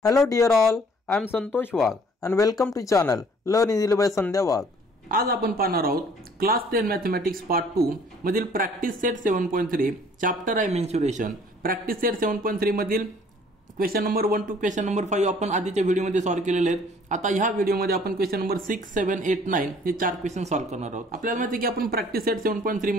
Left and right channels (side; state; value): both; normal; correlation 0.56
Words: Hello dear all, I am Santosh Wagh and welcome to channel Learn Easily by Sandhya Wagh. आज आपण पाहणार आहोत class 10 mathematics part 2 मधील practice set 7.3 chapter आहे mensuration. Practice set 7.3 मधील question number 1 to question number 5 आपण आधीच्या व्हिडिओमध्ये सॉल्व्ह केलेले आहेत. आता ह्या व्हिडिओमध्ये आपण क्वेश्चन नंबर 6, 7, 8, 9 हे चार क्वेश्चन सॉल्व्ह करणार आहोत. आपल्याला माहिती आहे की आपण प्रॅक्टिस सेट 7.3